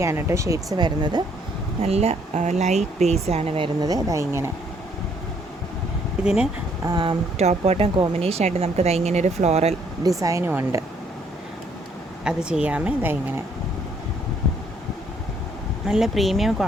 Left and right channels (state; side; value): normal; both; correlation 0.67